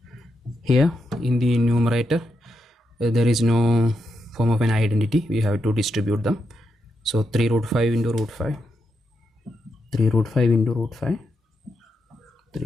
Here in the numerator there is no form of an identity. We have to distribute them. So 3 root 5 into root 5, 3 root 5 into root 5,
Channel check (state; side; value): normal; both; correlation 0.83